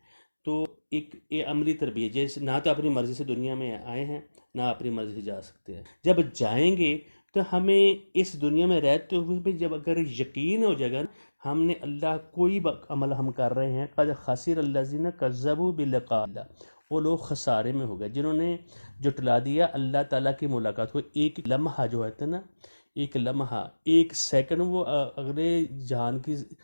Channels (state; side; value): inverted; both; correlation -1.00